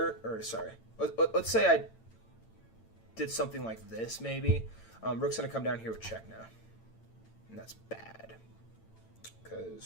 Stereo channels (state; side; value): late; right; 8.9 ms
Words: or sorry, let's say I did something like this maybe. Rook's going to come down here with check now. And that's bad.